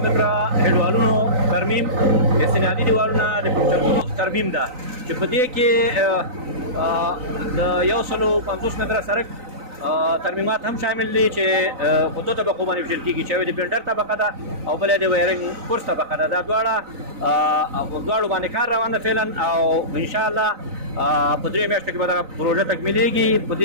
متره دیوالونو ترمیم، استنادي دیوالونه، د پلچکونو ترمیم ده چې په دې کې د 150 متره سړک ترمیمات هم شامل دي چې په دوه طبقو باندې ویشل کېږي چې یوه د بلډر طبقه ده او بله د وایرنګ کورس طبقه ده. دا دواړو باندې کار روان ده فعلا او انشاءالله په 3 میاشتو کې به دغه پروژه تکمیلېږي. په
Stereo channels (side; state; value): left; late; 3.9 ms